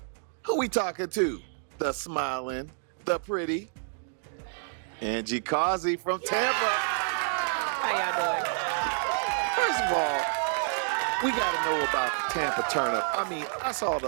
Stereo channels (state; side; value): silent; left; digital silence